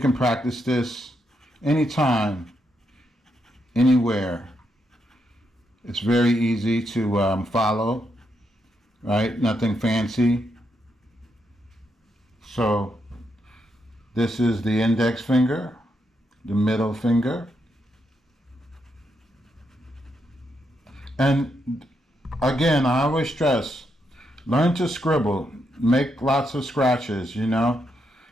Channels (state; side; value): normal; both; correlation 0.80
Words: practice this anytime, anywhere. It's very easy to follow, right? Nothing fancy. So this is the index finger, the middle finger. And again, I always stress, learn to scribble, make lots of scratches,